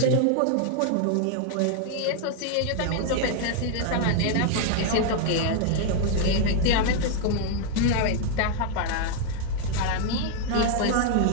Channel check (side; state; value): both; different; correlation 0.00